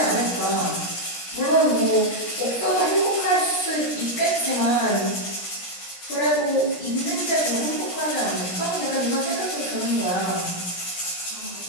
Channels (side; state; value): right; late; 17 ms